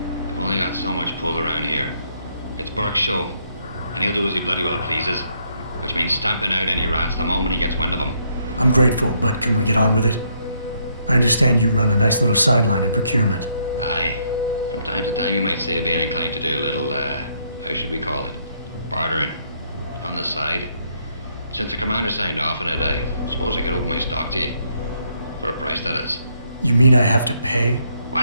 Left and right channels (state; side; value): inverted; both; correlation -0.72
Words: We've only got so much pull around here. It's Burke's show, and he'll do as he bloody well pleases, which means stamping out any rats the moment he gets wind of them. I'm grateful, but can we get on with it? I understand you run a nice little sideline in procurement. Aye. From time to time you might say being inclined to do a little, how should we call it? Bartering. On the side. Since the commander signed off on it, I suppose I could open my stock to you. For a price, that is. You mean I have to pay?